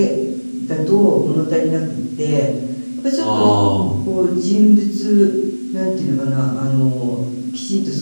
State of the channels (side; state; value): both; inverted; correlation -1.00